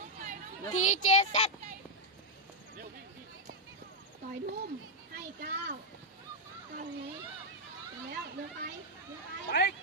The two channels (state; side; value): normal; both; correlation -0.02